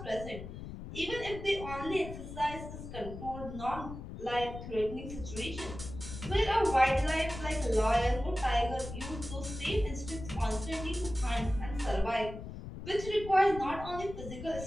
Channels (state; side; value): noise; left; rumble, 10 dB below the sound